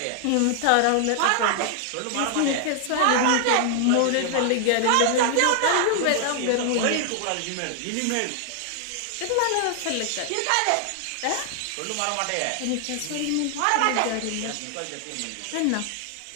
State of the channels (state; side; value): different; both; correlation 0.00